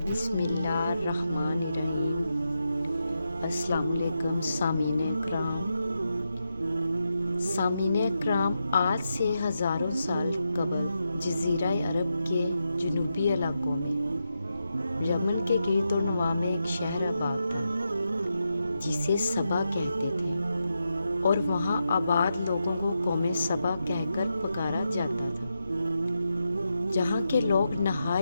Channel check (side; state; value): both; inverted; correlation -0.87